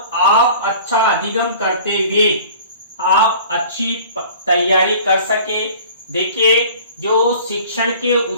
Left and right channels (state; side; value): inverted; both; correlation -0.46